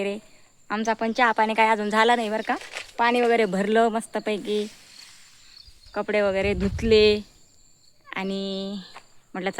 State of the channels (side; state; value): both; identical; correlation 1.00